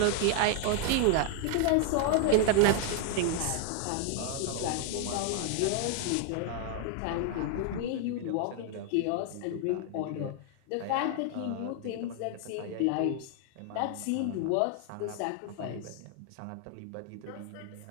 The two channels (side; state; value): both; different; correlation 0.00